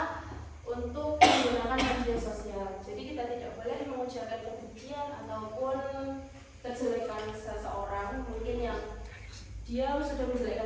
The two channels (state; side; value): identical; both; correlation 1.00